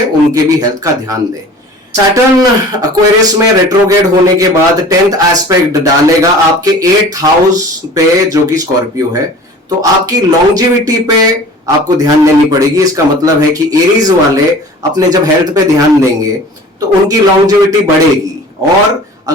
उनके भी हेल्थ का ध्यान दे। सैटर्न एक्वेरियस में रेट्रोग्रेड होने के बाद 10th एस्पेक्ट डालेगा आपके 8th हाउस पे जो कि स्कॉर्पियो है, तो आपकी लॉन्जिविटी पे आपको ध्यान देनी पड़ेगी। इसका मतलब है कि एरीज वाले अपने जब हेल्थ पे ध्यान देंगे तो उनकी लॉन्जिविटी बढ़ेगी। और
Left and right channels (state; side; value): normal; both; correlation 0.43